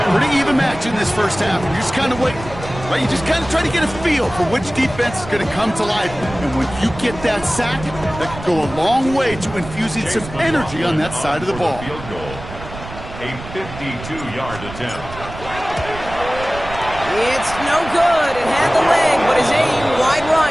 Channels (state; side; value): noise; right; rumble, 13 dB below the sound